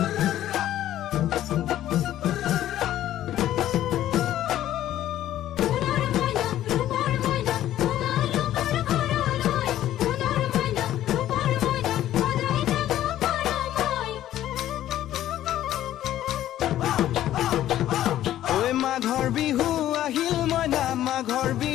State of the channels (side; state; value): right; quieter; 12.8 dB